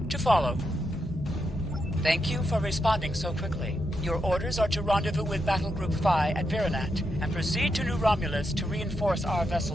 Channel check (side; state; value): both; normal; correlation 0.83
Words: to follow. Thank you for responding so quickly. Your orders are to rendezvous with Battle Group Phi at Virinat and proceed to New Romulus to reinforce our